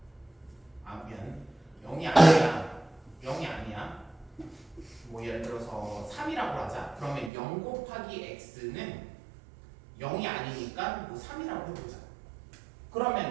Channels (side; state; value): left; drops out; at 7.3 s